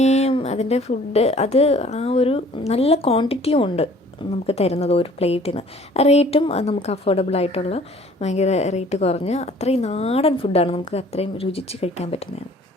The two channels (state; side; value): normal; both; correlation 0.53